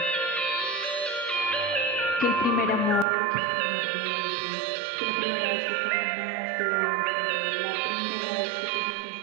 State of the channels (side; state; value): left; drops out; at 3.1 s